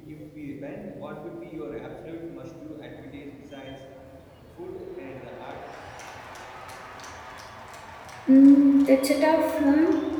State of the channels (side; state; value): both; identical; correlation 1.00